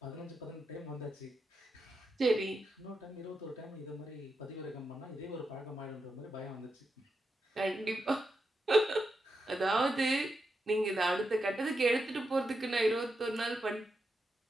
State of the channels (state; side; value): normal; both; correlation 0.86